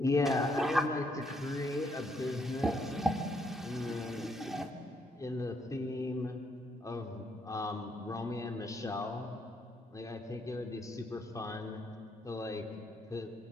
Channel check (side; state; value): both; normal; correlation 0.73